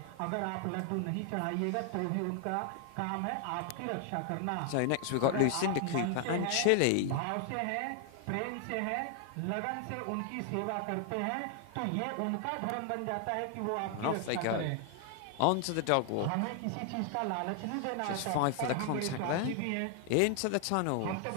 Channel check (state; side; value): different; both; correlation 0.00